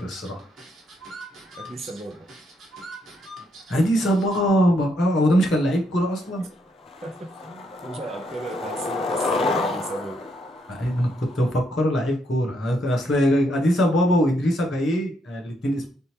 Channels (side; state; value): both; normal; correlation 0.76